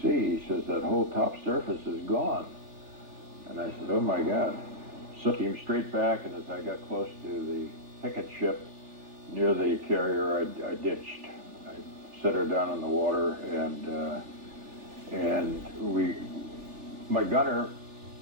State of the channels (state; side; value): late; left; 3.4 ms